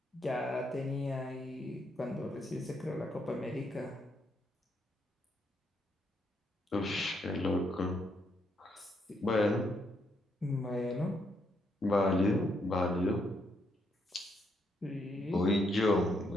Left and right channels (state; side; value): normal; both; correlation 0.76